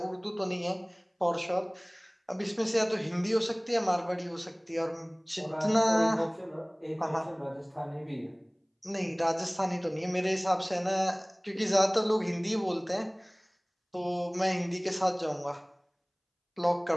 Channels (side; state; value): both; identical; correlation 1.00